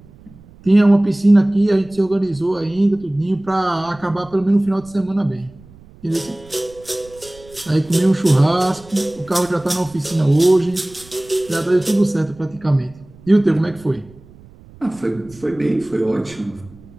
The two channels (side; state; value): right; noise; rumble, 23 dB below the sound